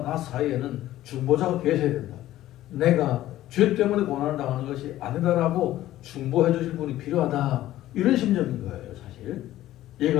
나 사이에는 중보자가 계셔야 된다. 내가 죄 때문에 고난을 당하는 것이 아니다라고 중보해 주실 분이 필요하다. 이런 심정인 거예요, 사실.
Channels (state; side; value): quieter; right; 14.3 dB